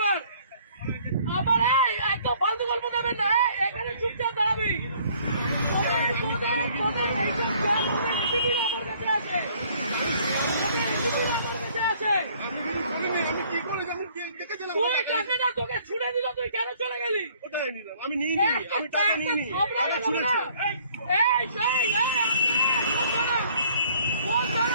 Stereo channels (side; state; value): both; inverted; correlation -0.59